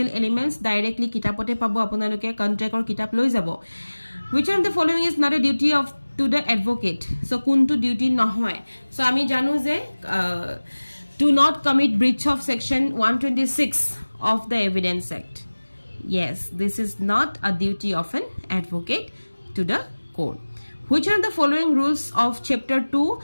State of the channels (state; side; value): inverted; both; correlation -1.00